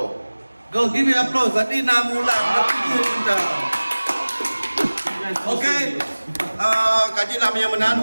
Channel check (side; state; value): both; inverted; correlation -1.00